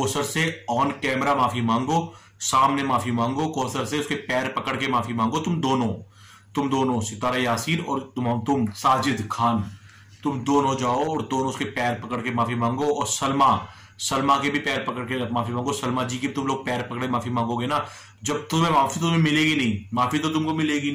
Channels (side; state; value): both; identical; correlation 1.00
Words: से ऑन कैमरा माफी मांगो, सामने माफी मांगो, कौसर से उसके पैर पकड़ के माफी मांगो। तुम दोनों सितारा यासीन और तुम साजिद खान, तुम दोनों जाओ और दोनों उसके पैर पकड़ के माफी मांगो। और सलमा के भी पैर पकड़ के माफी मांगो। सलमा जी के तुम लोग पैर पकड़े माफी मांगोगे ना, जब तुम्हें माफी तुम्हें मिलेगी नहीं, माफी तो तुमको मिलेगी